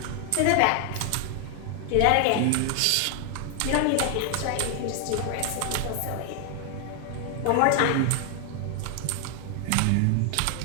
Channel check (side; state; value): both; different; correlation 0.00